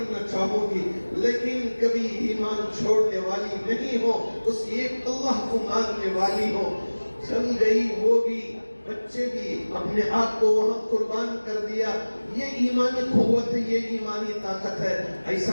چاہوں گی، لیکن کبھی ایمان چھوڑنے والی نہیں ہو، اس ایک اللہ کو ماننے والی ہو۔ چل گئی وہ بھی، بچے بھی اپنے آپ کو وہاں قربان کر دیا. یہ ایمانی قوت ہے, یہ ایمانی طاقت ہے.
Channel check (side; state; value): both; inverted; correlation -1.00